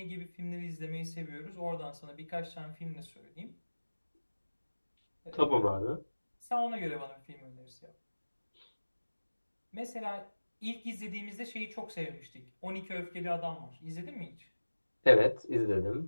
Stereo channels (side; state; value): both; inverted; correlation -1.00